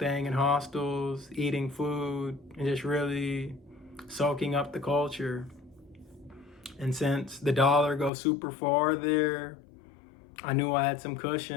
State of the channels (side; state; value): right; drops out; at 8.1 s